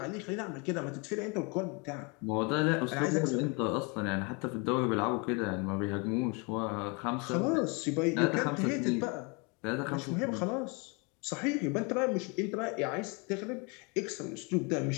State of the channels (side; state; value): right; quieter; 31.3 dB